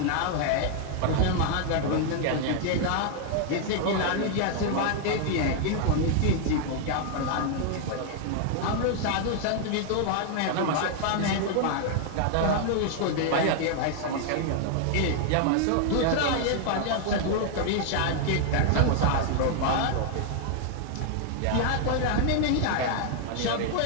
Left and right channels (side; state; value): both; different; correlation 0.00